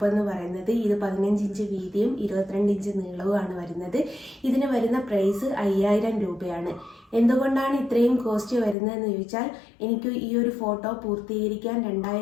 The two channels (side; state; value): right; drops out; at 8.8 s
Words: എന്ന് പറയുന്നത്. ഇത് 15 ഇഞ്ച് വീതിയും 22 ഇഞ്ച് നീളവുമാണ് വരുന്നത്. ഇതിന് വരുന്ന പ്രൈസ് 5000 രൂപയാണ്. എന്തുകൊണ്ടാണ് ഇത്രയും കോസ്റ്റ് വരുന്നതെന്ന് ചോദിച്ചാൽ, എനിക്ക് ഈ ഒരു ഫോട്ടോ പൂർത്തീകരിക്കാൻ